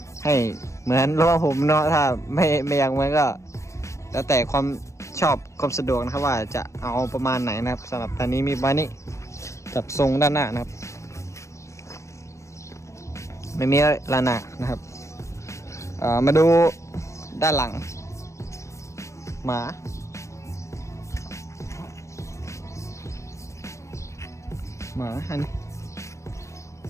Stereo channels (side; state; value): right; late; 0.14 ms